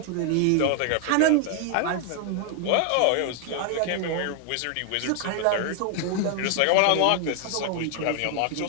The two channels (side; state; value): both; different; correlation 0.00